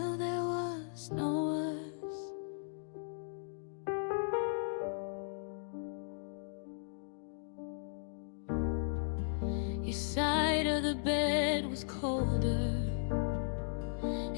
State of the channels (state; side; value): silent; right; digital silence